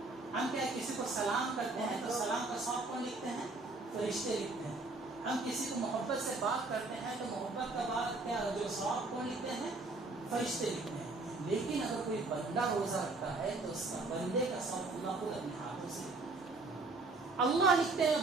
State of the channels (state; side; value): quieter; left; 3.4 dB